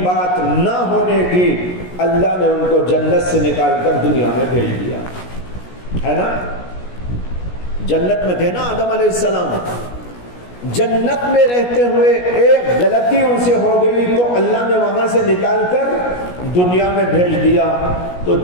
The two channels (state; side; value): late; right; 17 ms